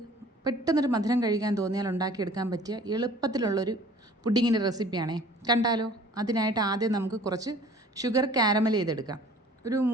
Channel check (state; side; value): normal; both; correlation 0.50